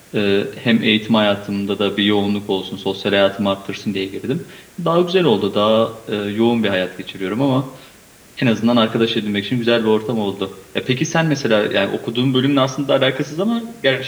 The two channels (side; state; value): both; identical; correlation 1.00